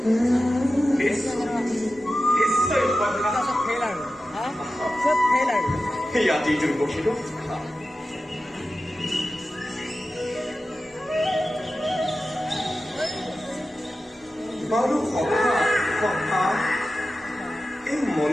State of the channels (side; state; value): both; normal; correlation 0.93